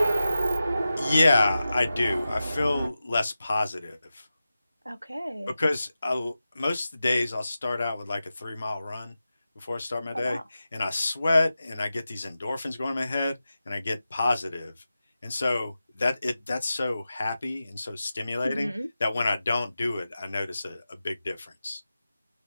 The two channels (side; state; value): both; inverted; correlation -0.93